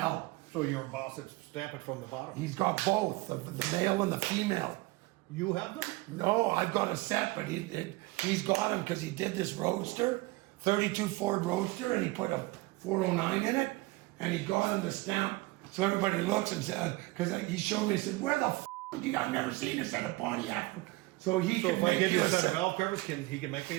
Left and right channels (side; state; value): left; quieter; 21.4 dB